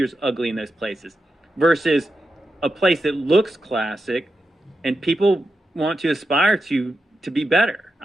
is ugly in those places versus a place that looks classic and people want to aspire to be better.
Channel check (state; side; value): normal; both; correlation 0.89